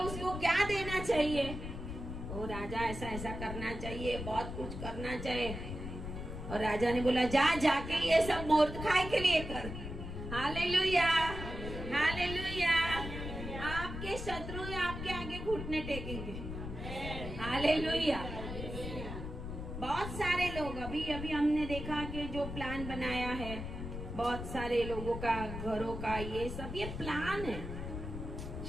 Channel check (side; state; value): left; noise; rumble, 7 dB below the sound